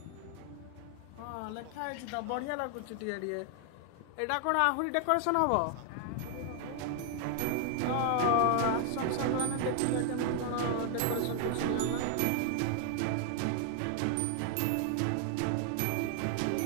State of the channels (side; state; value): both; different; correlation 0.00